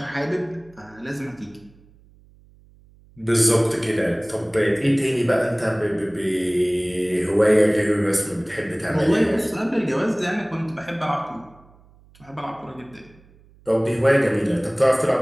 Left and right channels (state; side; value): noise; right; hum, 28 dB below the sound